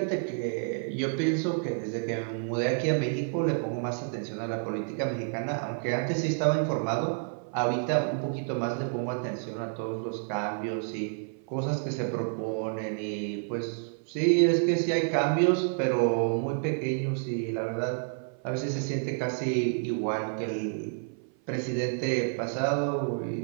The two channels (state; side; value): silent; left; 55 dB below the other